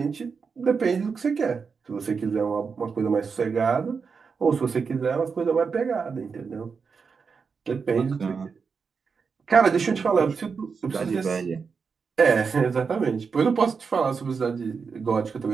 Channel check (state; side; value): quieter; left; 5.5 dB